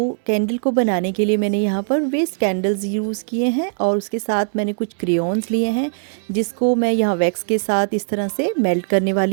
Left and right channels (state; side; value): silent; left; digital silence